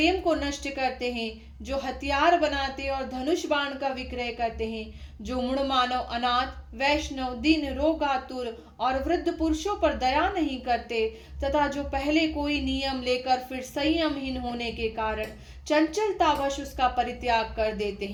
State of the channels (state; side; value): identical; both; correlation 1.00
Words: को नष्ट करते हैं, जो हथियार बनाते और धनुष बाण का विक्रय करते हैं, जो मूढ़ मानव, अनाथ, वैष्णव, दीन, रोगातुर और वृद्ध पुरुषों पर दया नहीं करते, तथा जो पहले कोई नियम लेकर फिर संयमहीन होने के कारण चंचलतावश उसका परित्याग कर देते